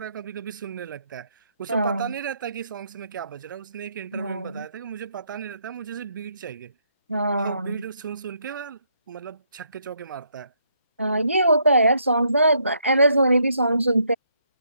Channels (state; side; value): inverted; both; correlation -0.74